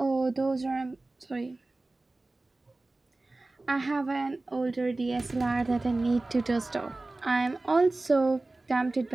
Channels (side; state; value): left; quieter; 3.0 dB